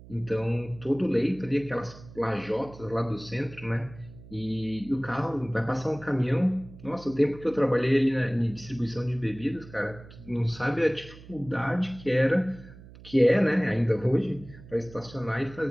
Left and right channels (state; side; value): noise; right; hum, 19 dB below the sound